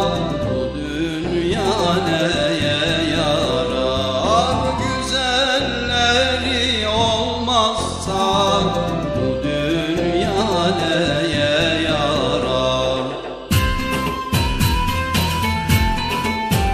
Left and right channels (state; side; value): identical; both; correlation 1.00